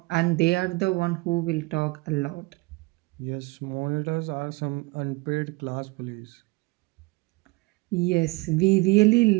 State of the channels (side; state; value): left; quieter; 24.0 dB